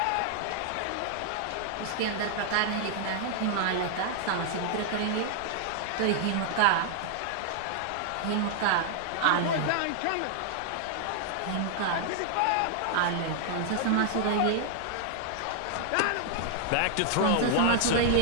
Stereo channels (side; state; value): both; different; correlation 0.00